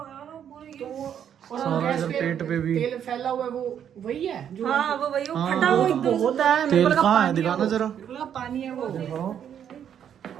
सारा इधर पेट पे भी तेल फैला हुआ है, वो वही है जो हाँ वो वही वो फटा हुआ एकदम से। होता है। तेल कहाँ है, दिखाना जरा। बिल्कुल पानी है वो। पानी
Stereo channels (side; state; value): left; quieter; 9.1 dB